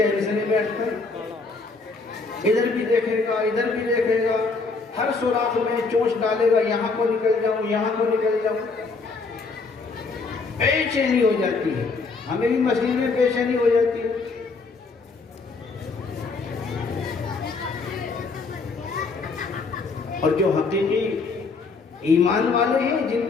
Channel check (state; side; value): quieter; right; 4.1 dB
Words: से नहीं बैठता, इधर भी देखेगा, इधर भी देखेगा, हर सुराख में चोंच डालेगा, यहां को निकल जाऊं, यहां को निकल जाऊं, बेचैनी हो जाती है। हमें भी मस्जिद में बेचैनी हो जाती है। और जो हकीकी ईमान वाले हैं,